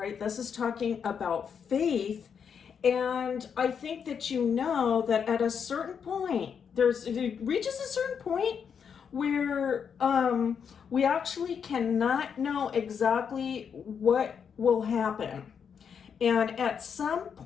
this is talking about faith, and I think that that at a certain point, it reaches a certain point where we actually cannot know exactly what will happen. And at some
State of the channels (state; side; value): quieter; right; 7.0 dB